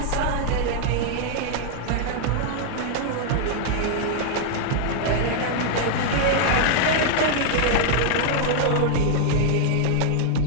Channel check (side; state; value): both; different; correlation -0.01